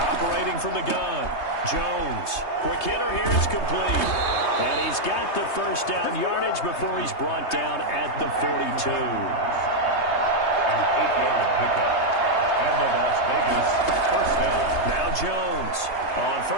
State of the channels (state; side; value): late; right; 3.2 ms